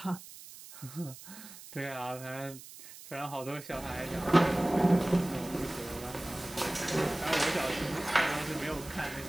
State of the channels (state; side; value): noise; right; hiss, 16 dB below the sound